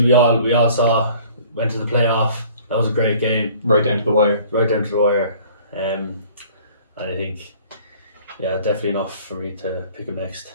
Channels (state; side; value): inverted; both; correlation -0.52